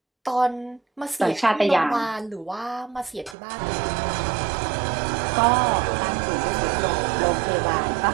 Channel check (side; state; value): left; drops out; at 3.4 s